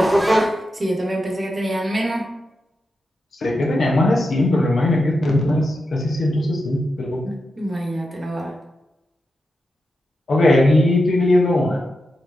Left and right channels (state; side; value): normal; both; correlation 0.88